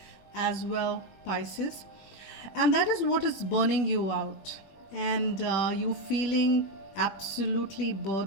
as well, Pisces. And that is what is burning you out, and you feeling absolutely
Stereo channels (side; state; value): right; late; 21 ms